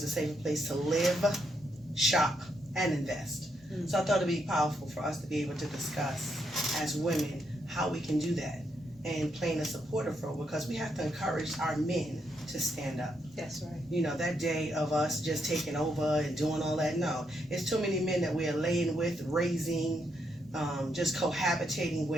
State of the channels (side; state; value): both; normal; correlation 0.78